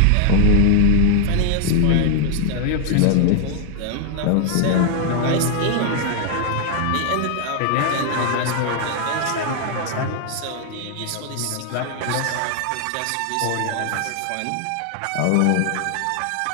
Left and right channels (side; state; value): both; different; correlation 0.00